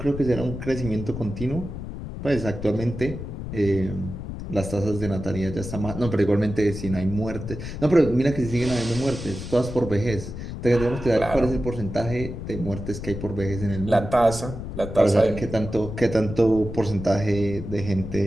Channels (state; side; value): noise; left; rumble, 8 dB below the sound